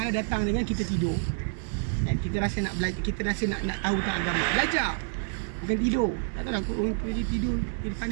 datang dengan kita tidur dan kita rasa nak belajar, kita rasa nak tahu tentang agama. Belajar, bukan tidur. Tak tahu lah orang pergi tidur, dia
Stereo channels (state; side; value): silent; left; digital silence